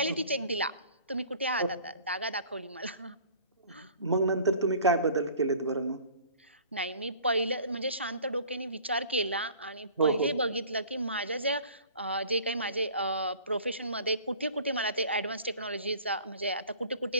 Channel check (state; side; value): inverted; both; correlation -0.48